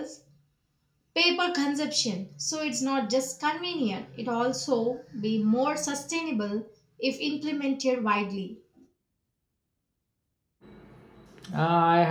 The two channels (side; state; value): both; identical; correlation 1.00